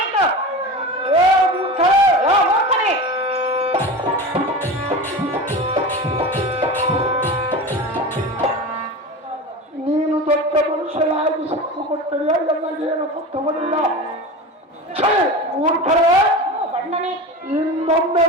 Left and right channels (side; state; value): both; normal; correlation 0.29